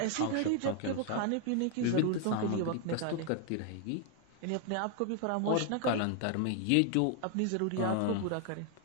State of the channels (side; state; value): both; different; correlation 0.00